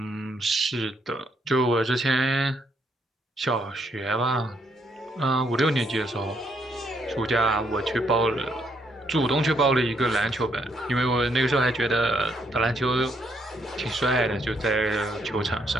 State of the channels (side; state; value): both; normal; correlation 0.73